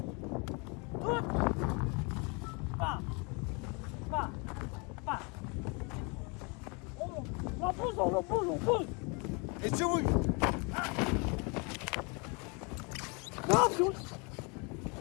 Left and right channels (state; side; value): quieter; right; 31.6 dB